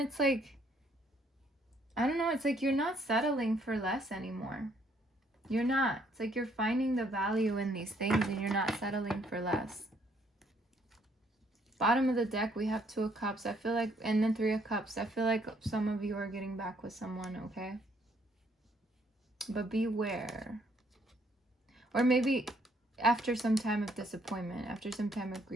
like, I don't know, it's like you're not settling for less anymore. You're not. It's like you're finding the value in these things and you're not settling for less. Bottom of the deck, we have Two of Cups. I feel like, and then Three of Cups. I feel like some of you are getting back with someone, okay? But beware. Or maybe after some time of disappointment, after some time of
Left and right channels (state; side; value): normal; both; correlation 0.67